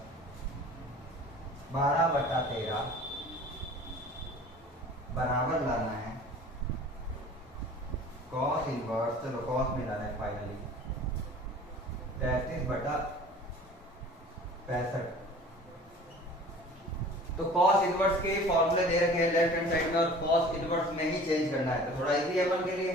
12/13 बराबर लाना है cos इनवर्स, चलो cos में लाना है फाइनली 33/65। तो cos इनवर्स के फॉर्मूले दे रखे हैं लेफ्ट हैंड साइड में और cos इनवर्स में ही चेंज करना है। तो थोड़ा इजी है अपन के लिए,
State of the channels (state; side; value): normal; both; correlation 0.45